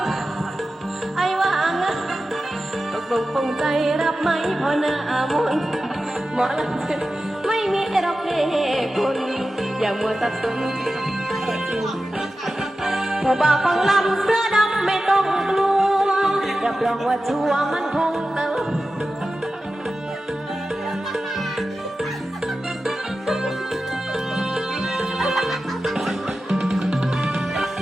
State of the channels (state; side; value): normal; both; correlation 0.93